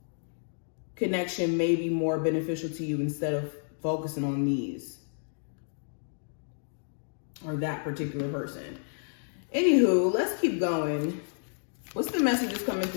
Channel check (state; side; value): silent; right; digital silence